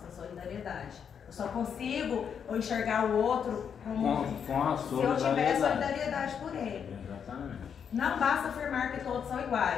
a solidariedade. Eu só consigo enxergar o outro como se eu tiver solidariedade por ele. Exatamente. Não basta afirmar que todos são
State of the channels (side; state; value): right; quieter; 7.4 dB